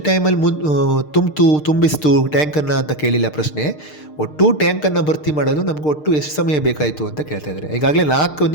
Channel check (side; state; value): right; late; 6.6 ms